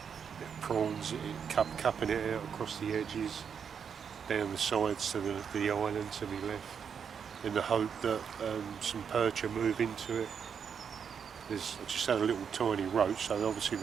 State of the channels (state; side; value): quieter; left; 7.1 dB